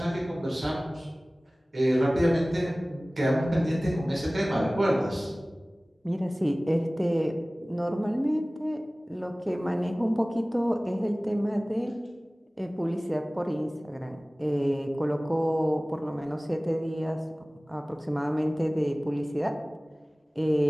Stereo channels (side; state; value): both; normal; correlation 0.98